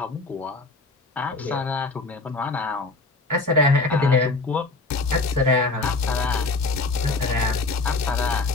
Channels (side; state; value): right; quieter; 3.4 dB